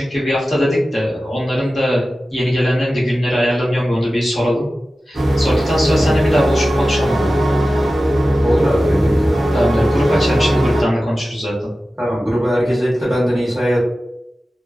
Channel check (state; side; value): normal; both; correlation 0.95